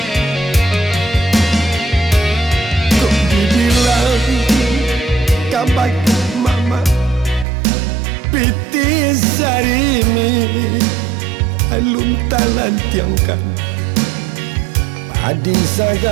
Kok dibilang kabak mama piti sarimi alung talan tiangkan adi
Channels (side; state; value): left; drops out; at 7.5 s